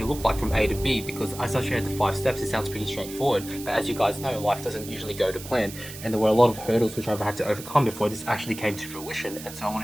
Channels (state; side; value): noise; right; hiss, 13 dB below the sound